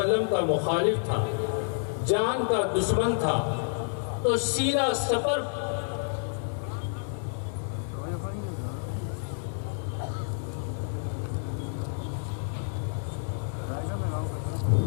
کا مخالف تھا، جان کا دشمن تھا، تو سیدھا سفر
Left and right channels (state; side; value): silent; right; digital silence